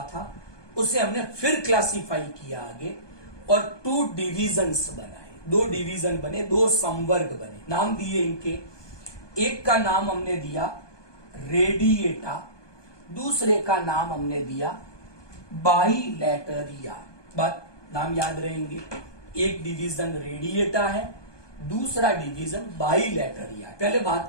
था, उसे हमने फिर क्लासिफाई किया आगे और 2 डिविजन्स बनाए, 2 डिवीजन बने, 2 संवर्ग बने। नाम दिए इनके, एक का नाम हमने दिया रेडिएटा, दूसरे का नाम हमने दिया बाइलेटरिया। बात नाम याद रहेंगे, एक डिवीजन रेडिएटा है, दूसरा डिवीजन बाइलेटरिया। पहले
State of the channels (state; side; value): late; right; 1.2 ms